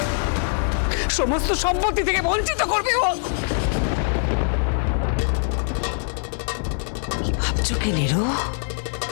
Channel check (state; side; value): silent; right; 64 dB below the other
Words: সমস্ত সম্পত্তি থেকে বঞ্চিত করবে। ও কি ভাবছো কি নিরু?